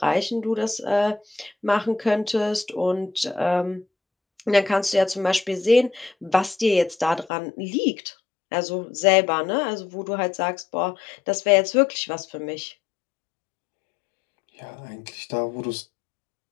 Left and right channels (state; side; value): drops out; right; at 7.3 s